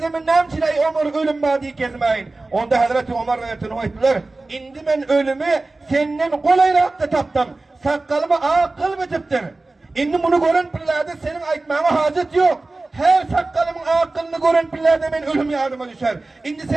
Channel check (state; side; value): quieter; left; 3.2 dB